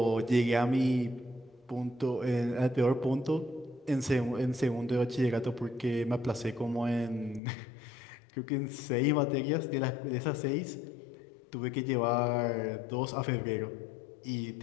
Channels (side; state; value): right; drops out; at 7.4 s